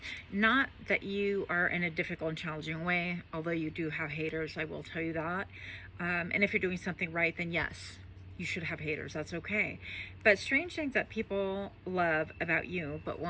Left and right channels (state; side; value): identical; both; correlation 1.00